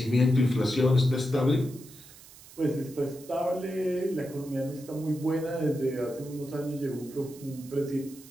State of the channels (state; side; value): noise; right; hiss, 20 dB below the sound